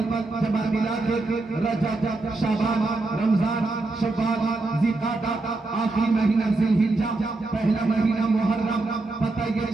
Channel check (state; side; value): quieter; left; 3.2 dB